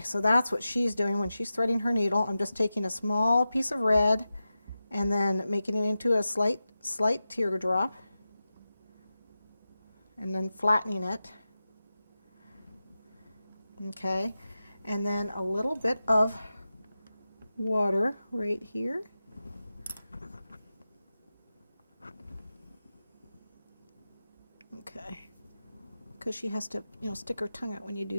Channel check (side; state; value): both; inverted; correlation -0.93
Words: so that's what she's doing when she's threading her needle. I'm just taking a small piece of red and then making it into a slight teardrop and then flattening it. Okay, and then a little bit of water right here. Okay, because she has to, you know, stick her tongue out when you